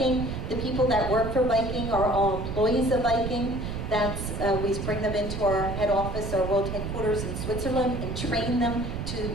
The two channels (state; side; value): noise; right; rumble, 5 dB below the sound